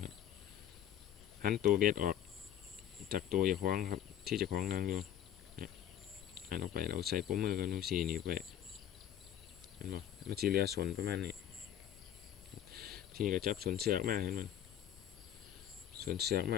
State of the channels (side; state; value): right; quieter; 10.5 dB